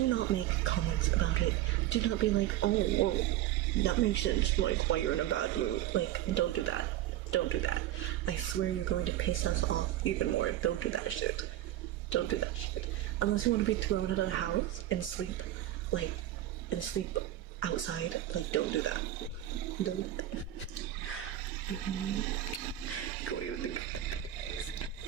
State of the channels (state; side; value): quieter; left; 13.2 dB